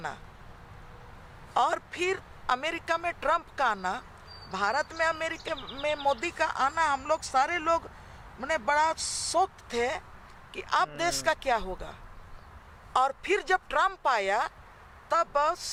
और फिर अमेरिका में ट्रम्प का आना, भारत में अमेरिका में मोदी का आना, हम लोग सारे लोग मैंने बड़ा शौक थे कि अब देश का क्या होगा। और फिर जब ट्रम्प आया तब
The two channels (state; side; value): identical; both; correlation 1.00